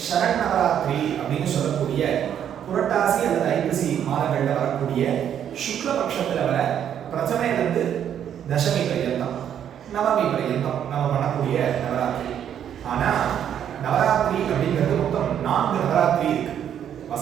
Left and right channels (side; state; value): left; quieter; 9.4 dB